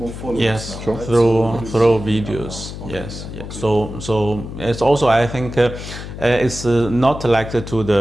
followers. Yes, now, right? through videos. Okay, yes. So it's also, I think it's not like to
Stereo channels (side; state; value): left; noise; hum, 10 dB below the sound